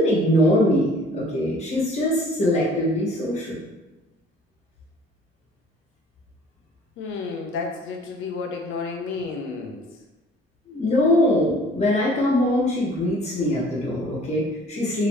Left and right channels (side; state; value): both; normal; correlation 0.52